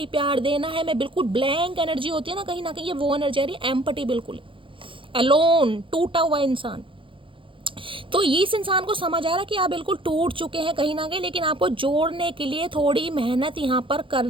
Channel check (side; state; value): left; late; 0.25 ms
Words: प्यार देना है, मैं बिल्कुल ब्लैंक एनर्जी होती है ना कहीं ये वो एनर्जी आ रही है, एम्पटी, बिल्कुल एलोन, टूटा हुआ इंसान। तो इस इंसान को समझ आ रहा है कि आप बिल्कुल टूट चुके हैं कहीं ना कहीं, लेकिन आपको जोड़ने के लिए थोड़ी मेहनत यहाँ पर